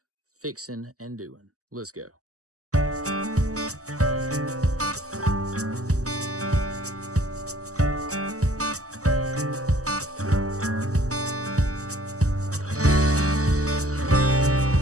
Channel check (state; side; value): late; left; 0.66 ms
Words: fixing and doing. Let's go.